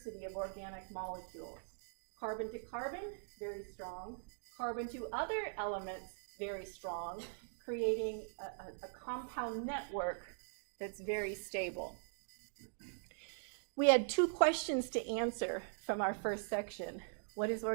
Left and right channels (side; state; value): left; silent; digital silence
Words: of organic molecules. Carbon to carbon, very strong. Carbon to other elements, very strong, creating a compound network that's very stable. We had two questions to answer from our first section. What is